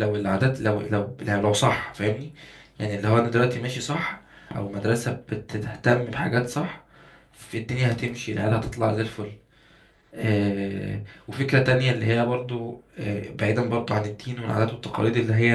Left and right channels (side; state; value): both; identical; correlation 1.00